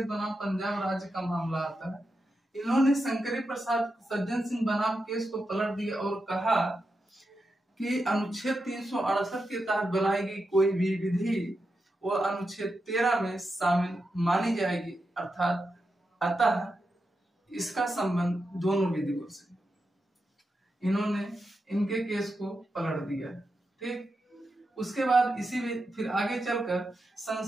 बनाम पंजाब राज्य का मामला आता है। इन्होंने शंकरी प्रसाद सज्जन सिंह बनाम केस को पलट दिया और कहा कि अनुच्छेद 368 के तहत बनाई गई कोई भी विधि वह अनुच्छेद 13 में शामिल मानी जाएगी, अर्थात अतः इसका संबंध दोनों विधियों से। इन्होंने इनके केस को पलट दिया। ठीक, उसके बाद इसी में फिर आगे चलकर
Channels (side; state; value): both; normal; correlation 0.88